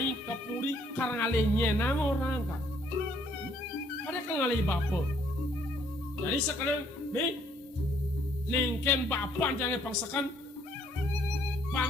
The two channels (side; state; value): both; normal; correlation 0.65